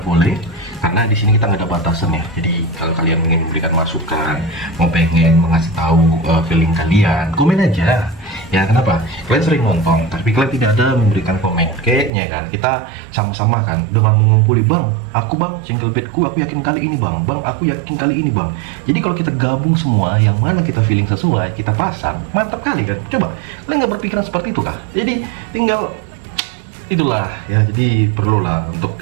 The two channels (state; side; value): drops out; left; at 12.1 s